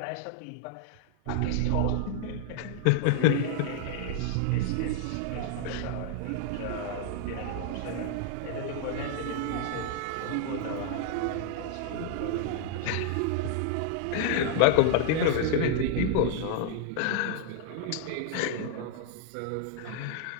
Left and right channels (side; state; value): both; different; correlation -0.01